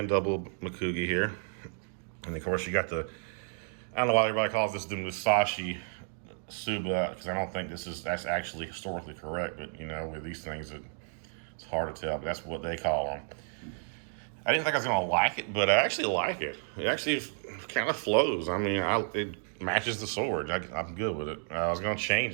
double Mekugi here. And of course you got I don't know why everybody calls this the Musashi Tsuba, because I don't think that's actually historically correct, but with these things it's hard to tell, but that's what they call them. I didn't think I was going to like it, but I actually like it. It actually kind of flows. I mean, it matches the sword. I'm good with it. I was going to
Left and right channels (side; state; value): left; silent; 57 dB below the other